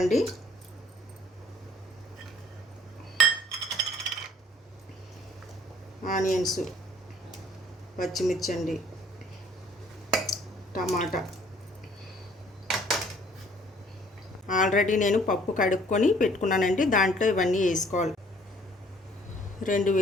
ఆనియన్స్, పచ్చిమిర్చి అండి, టమాటా. ఆల్రెడీ నేను పప్పు కడుక్కొని పెట్టుకున్నానండి. దాంట్లో ఇవన్నీ వేసుకోవాలి. 2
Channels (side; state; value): both; normal; correlation 0.58